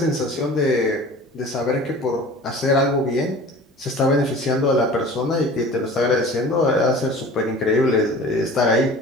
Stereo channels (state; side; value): normal; both; correlation 0.42